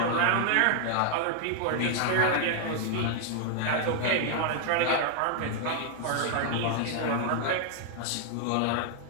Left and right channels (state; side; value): different; both; correlation 0.00